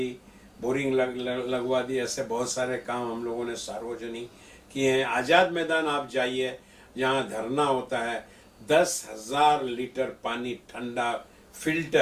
बोरिंग लगवा दी। ऐसे बहुत सारे काम हम लोगों ने सार्वजनिक किए हैं। आज़ाद मैदान आप जाइए, जहाँ धरना होता है, 10,000 लीटर पानी ठंडा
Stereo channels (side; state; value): both; identical; correlation 1.00